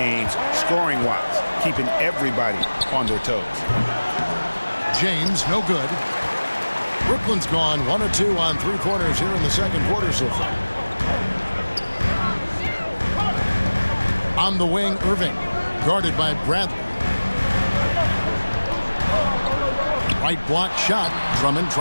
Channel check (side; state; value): both; inverted; correlation -1.00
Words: scoring-wise, keeping everybody on their toes. James, no good. Brooklyn's gone 1 of 2 on 3-pointers here in the second quarter so far. On the wing, Irving, guarded by Bradley. Right block shot. Drummond